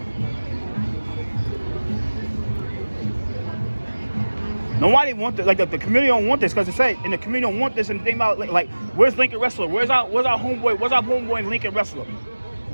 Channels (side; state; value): both; inverted; correlation -1.00